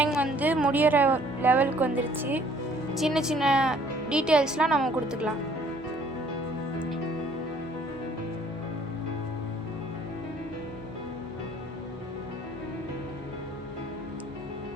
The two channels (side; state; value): both; normal; correlation 0.58